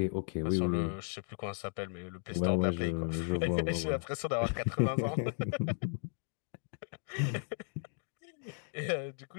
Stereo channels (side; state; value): right; silent; 54 dB below the other